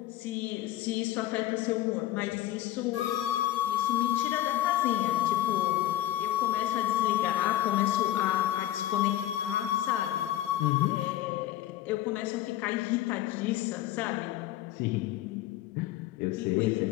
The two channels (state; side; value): quieter; right; 13.7 dB